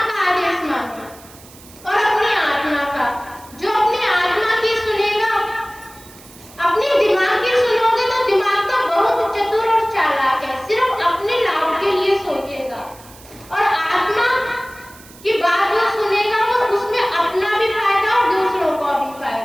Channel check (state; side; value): noise; right; hiss, 22 dB below the sound